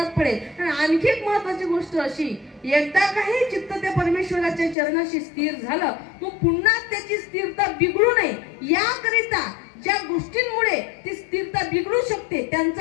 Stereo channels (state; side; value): drops out; right; at 4.8 s